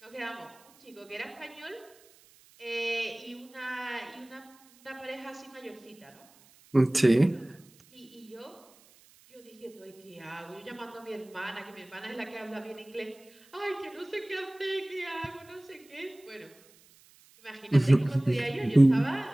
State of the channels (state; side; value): noise; right; hiss, 27 dB below the sound